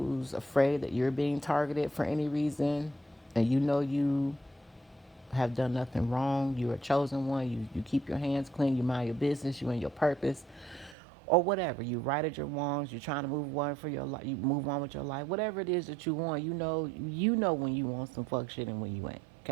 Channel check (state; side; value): drops out; left; at 11.0 s